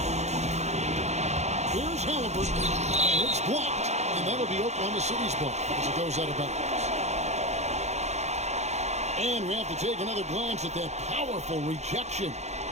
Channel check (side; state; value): left; late; 0.32 ms